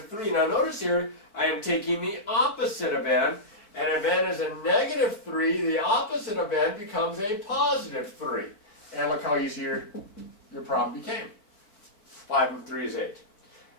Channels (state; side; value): late; right; 4.6 ms